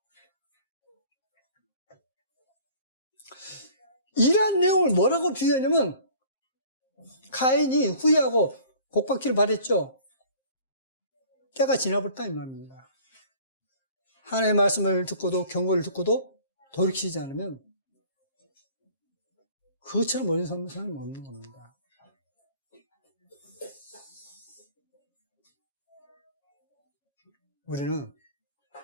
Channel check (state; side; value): inverted; both; correlation -0.49